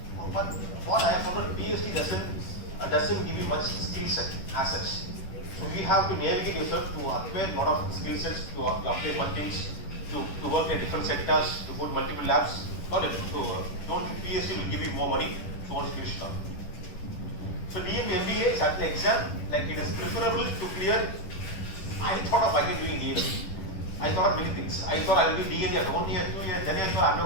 but what I have found, PhD doesn't give you much skill set as such. So you have to navigate yourself to acquire a lot of skill sets, to update one things, to work in different sectors, to go to multiple labs. Not it. So don't think PhD will give you more money, so once you finish it up. So DMB MBA is actually exam, it is preferable to clear. I thought of again doing DMB. I thought many things. I thought I will do DMB after 1 year, 2 years, then I thought I'm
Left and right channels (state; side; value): late; right; 10 ms